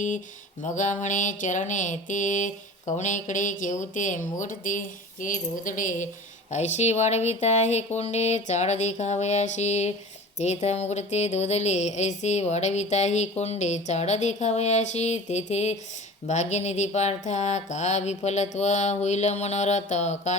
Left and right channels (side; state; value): both; normal; correlation 0.39